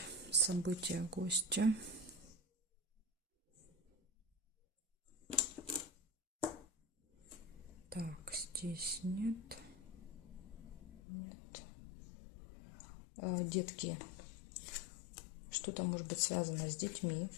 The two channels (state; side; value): drops out; right; at 11.0 s